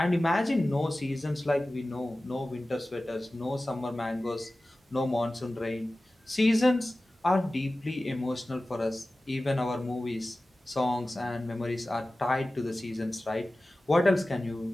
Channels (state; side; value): normal; both; correlation 0.96